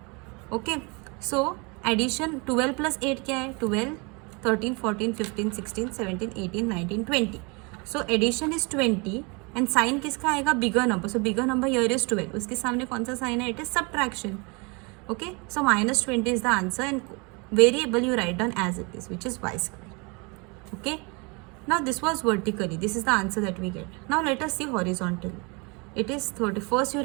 Okay, so addition 12 plus 8 क्या है? 12, 13, 14, 15, 16, 17, 18, 19, 20. So addition is 20 and sign किसका आएगा? Bigger number. So bigger number here is 12. उसके सामने कौन सा sign है? It is subtraction. Okay, so minus 20 is the answer and variable you write down as it is which is y square. Okay, now this was vertically. This is the answer that we get. Now let us see horizontally. It is 30. First you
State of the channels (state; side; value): quieter; left; 29.9 dB